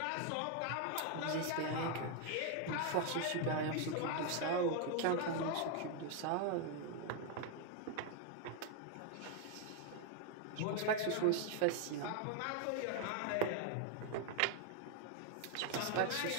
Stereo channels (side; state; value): both; different; correlation 0.01